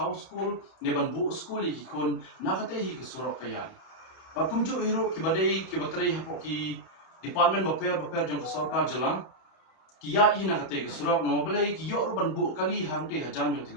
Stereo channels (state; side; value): late; right; 31 ms